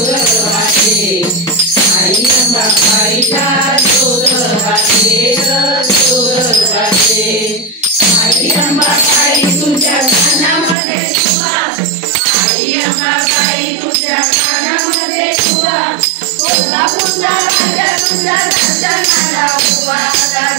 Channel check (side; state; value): left; drops out; at 10.8 s